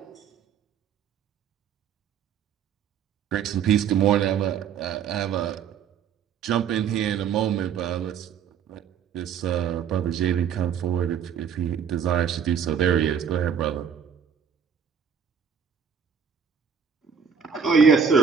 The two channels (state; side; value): quieter; left; 7.3 dB